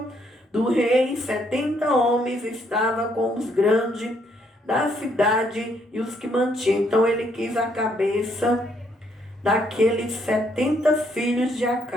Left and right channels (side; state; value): both; normal; correlation 0.71